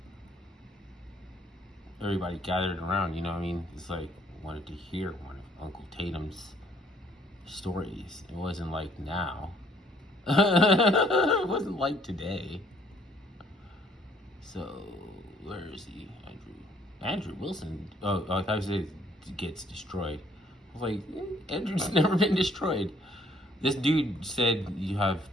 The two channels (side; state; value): both; normal; correlation 0.63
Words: Everybody gathered around, you know what I mean? It's like, wanted to hear one of Uncle Tatum's stories. It wasn't like now. It wasn't like today. So, where is he? Andrew Wilson. Oh, I thought he said gets destroyed. I was like, Andrew's never been destroyed. This dude said you have